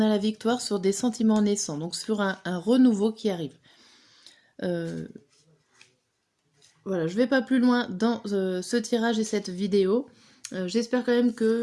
a la victoire sur des sentiments naissants, donc sur un renouveau qui arrive. Euh, voilà, je vais pas plus loin dans ce tirage et cette vidéo. J'espère quand même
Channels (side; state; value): both; identical; correlation 1.00